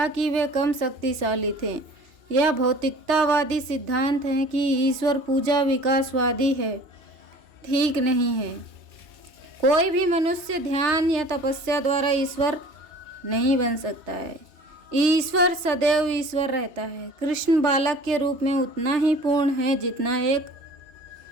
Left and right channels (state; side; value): late; left; 3.3 ms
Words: कि वे कम शक्तिशाली थे। यह भौतिकतावादी सिद्धांत है कि ईश्वर पूजा विकासवादी है, ठीक नहीं है। कोई भी मनुष्य ध्यान या तपस्या द्वारा ईश्वर नहीं बन सकता है। ईश्वर सदैव ईश्वर रहता है। कृष्ण बालक के रूप में उतना ही पूर्ण है जितना एक